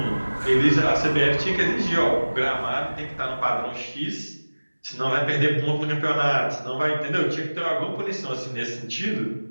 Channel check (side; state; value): both; inverted; correlation -1.00